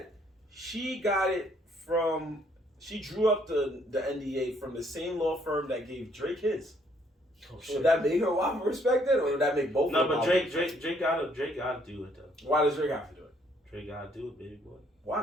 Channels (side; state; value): both; normal; correlation 0.66